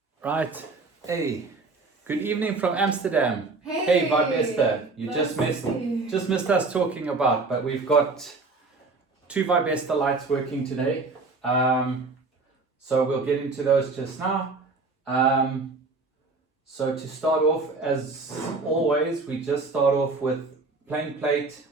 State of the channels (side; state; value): left; quieter; 3.8 dB